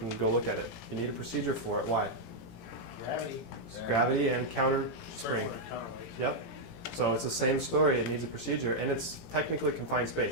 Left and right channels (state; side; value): late; right; 18 ms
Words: go look at it. You need a procedure for it. Why? Gravity. It's gravity and counter spring. Counterweight. Yep. So it's the same story. It needs a procedure, and it's technically confined